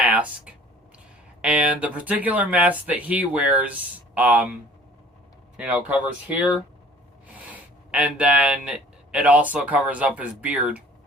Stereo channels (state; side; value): normal; both; correlation 0.49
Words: And the particular mask that he wears, you know, covers here. And then it also covers up his beard.